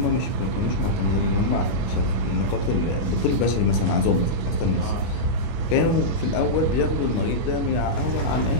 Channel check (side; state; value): right; late; 25 ms